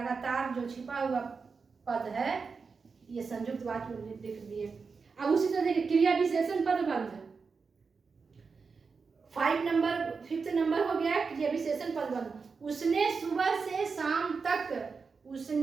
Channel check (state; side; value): quieter; left; 5.0 dB